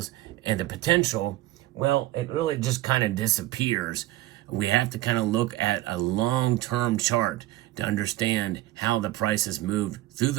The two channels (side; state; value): left; quieter; 16.4 dB